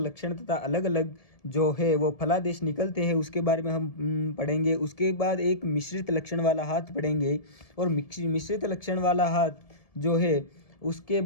तथा अलग अलग जो है वो फलादेश निकलते हैं, उसके बारे में हम पढ़ेंगे। उसके बाद एक मिश्रित लक्षण वाला हाथ पढ़ेंगे, और मिश्रित लक्षण वाला हाथ जो है उसके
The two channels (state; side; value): late; right; 1.7 ms